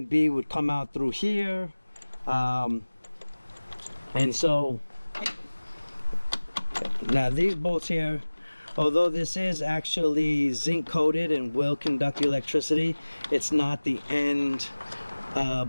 B would come out through here, and so now these bolts here, although this is actually zinc coated and will conduct electricity, it's not the end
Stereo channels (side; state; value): both; inverted; correlation -1.00